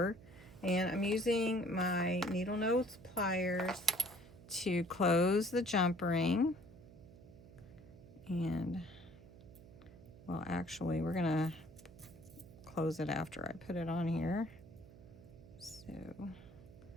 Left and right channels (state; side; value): noise; right; hum, 19 dB below the sound